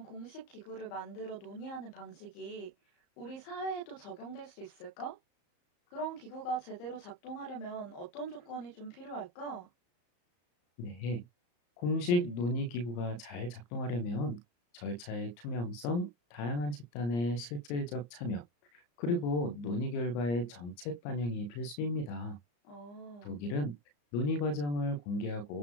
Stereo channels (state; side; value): late; right; 34 ms